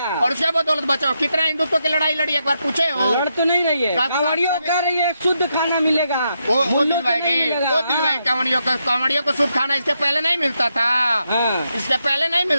और उसके बदौलत बचाओ। कितना हिंदुत्व की लड़ाई लड़ी एक बार पूछे हो? लड़ तो नहीं रही है। कांवड़ियों कह रही है शुद्ध खाना मिलेगा, वो दिलवाएगी। कांवड़ियों को शुद्ध खाना इसके पहले नहीं मिलता था। इसके पहले नहीं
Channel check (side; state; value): both; inverted; correlation -0.82